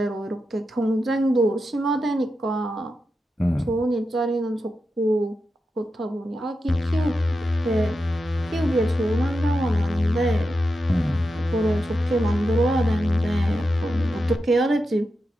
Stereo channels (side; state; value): both; normal; correlation 0.89